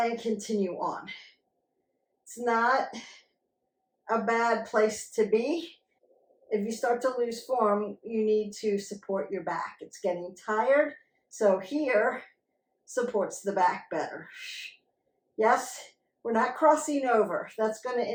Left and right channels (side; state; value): both; identical; correlation 1.00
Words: continue on. It's not a bad place to be. If you start to lose form, you need to support your back. It's getting tired, so here supports the back better. Yes, we're not crossing over. That's going to